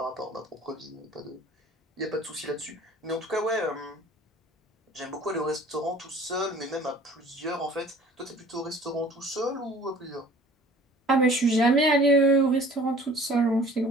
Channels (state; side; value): normal; both; correlation 0.48